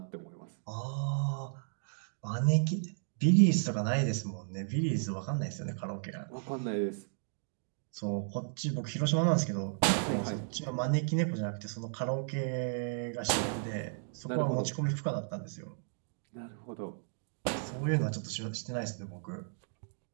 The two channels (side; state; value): left; silent; digital silence